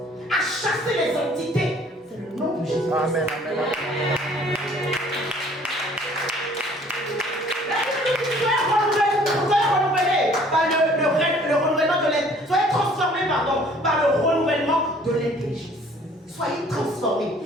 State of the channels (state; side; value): normal; both; correlation 0.55